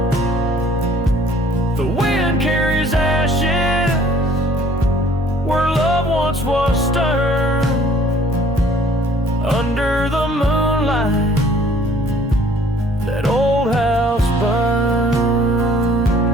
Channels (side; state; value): both; normal; correlation 0.56